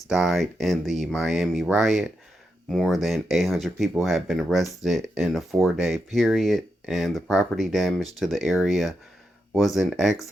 died in the Miami riot. More than 800 people have been arrested in a 4-day period, and the property damage to the area was in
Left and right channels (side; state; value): both; normal; correlation 0.85